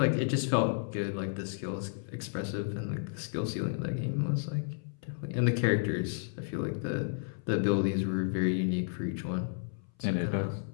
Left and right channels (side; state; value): right; silent; 56 dB below the other